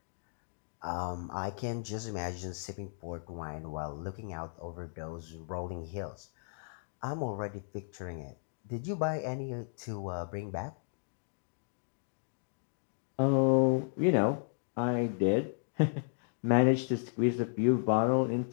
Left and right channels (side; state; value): right; silent; digital silence